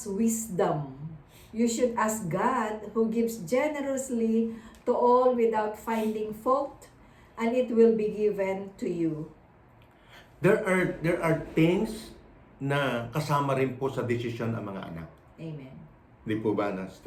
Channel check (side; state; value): both; identical; correlation 1.00